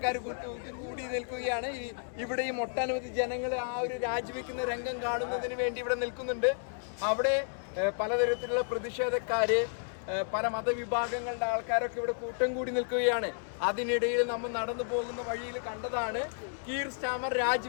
കൂടി നിൽക്കുകയാണ്. ഇവിടെയും ഒട്ടനവധി ജനങ്ങൾ ആ ഒരു രാജിവെക്കുന്ന രംഗം കാണുന്നതിന് വേണ്ടി ഇവിടെ നിൽക്കുന്നുണ്ട്. അവിടെ പലതരത്തിലുള്ള പ്രതിഷേധക്കാര്, പല മതവിഭാഗങ്ങളുടെ ആൾക്കാരൊക്കെ ഇവിടെ കൂട്ടം കൂടി നിൽക്കുകയാണ്. അതിനിടയിൽ നമ്മൾ നടന്നു പോകുന്ന വഴിയിൽ കണ്ടതാണ് കീർ സ്റ്റാമർ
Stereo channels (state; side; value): silent; right; digital silence